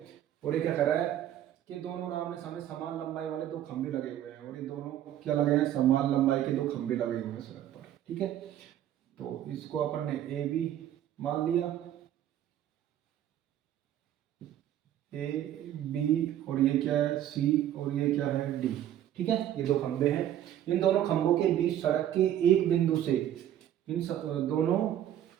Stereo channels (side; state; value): left; quieter; 11.6 dB